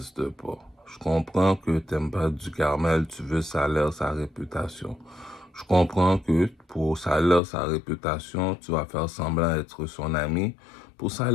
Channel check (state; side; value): drops out; right; at 7.4 s